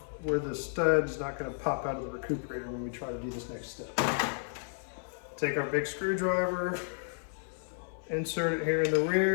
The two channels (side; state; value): right; silent; 56 dB below the other